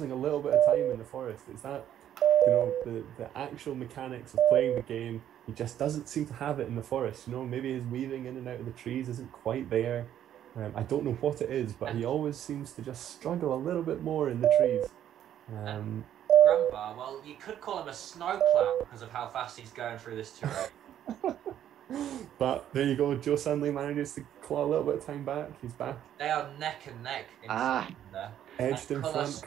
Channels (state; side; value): quieter; left; 10.7 dB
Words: a little bit of time in the forest. It's that, the actual mechanics of playing the game. He just doesn't seem to have it in the forest. Maybe his weaving in and out of the trees isn't quite there. I don't know what it is, but he always seems to just struggle a little bit more in the trees. Granbar, well, you could call him a snowplow because of how fast he's going through this terrain. But there you go, Joe Sunley manages to claw a little bit of time back. He's back. They are neck and neck in there. Edged in front,